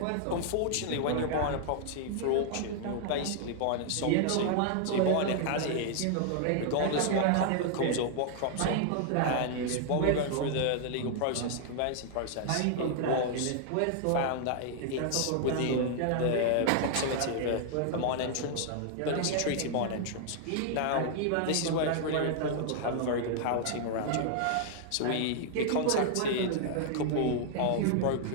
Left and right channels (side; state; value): both; different; correlation 0.00